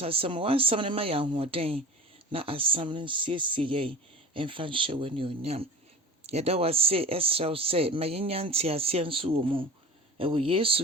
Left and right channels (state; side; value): normal; both; correlation 0.38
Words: wansam ne ma ya hoden na asam ne siesie ye emfa hye wani onyam. Yeda wase esraw se ma yenya ntiase nso wo mu ewo